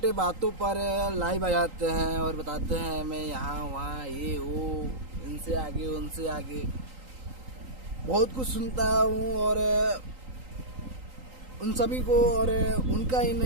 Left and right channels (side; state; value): left; late; 3.8 ms